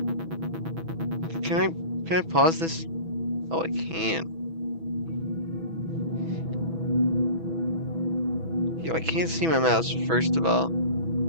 can I pause this? Oh, I can. Yo, I can't see my mouse first of all.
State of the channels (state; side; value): late; left; 6.1 ms